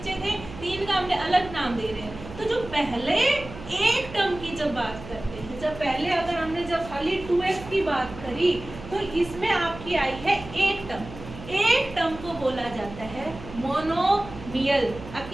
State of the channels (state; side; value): noise; right; hum, 14 dB below the sound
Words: थे तीन का हमने अलग नाम दे रहे हैं। तो जो पहले एक टर्म की जब बात करते हैं, जब पहले अगर हमने जब खाली 2x की बात करी तो इसमें आपकी आई है एक टर्म। एक टर्म को बोला जाता है मोनोमियल,